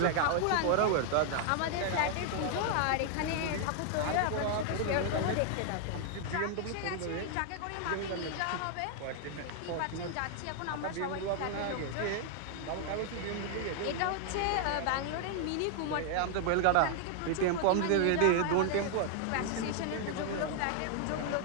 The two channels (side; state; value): both; different; correlation 0.00